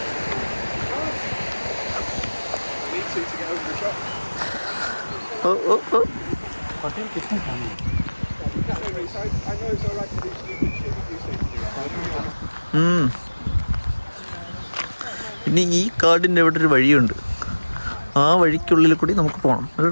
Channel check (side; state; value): both; inverted; correlation -1.00